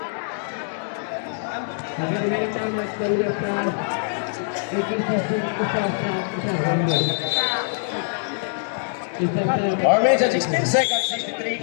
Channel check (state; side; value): silent; right; digital silence